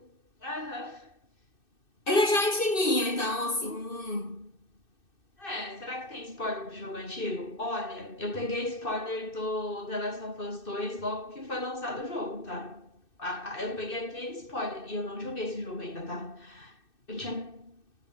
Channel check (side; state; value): right; late; 2.6 ms